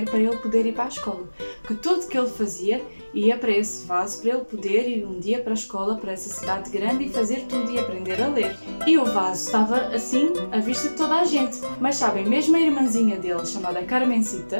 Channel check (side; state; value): both; inverted; correlation -1.00